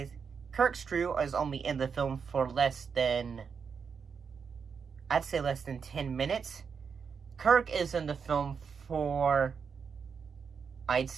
Kirk's crew is only in the film for less than 10 minutes. Kirk is in the film for, I'd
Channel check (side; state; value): left; quieter; 6.2 dB